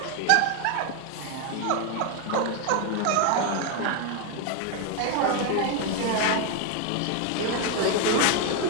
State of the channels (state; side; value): different; both; correlation 0.01